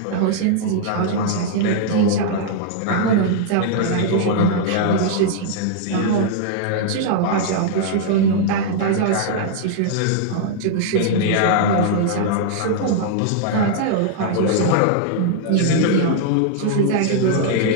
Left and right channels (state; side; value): different; both; correlation -0.01